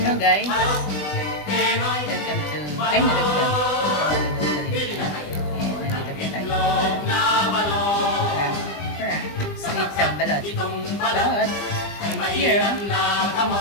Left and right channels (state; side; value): late; right; 20 ms